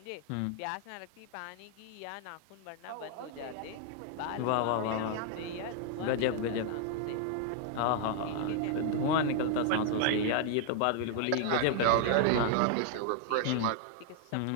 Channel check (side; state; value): both; different; correlation 0.00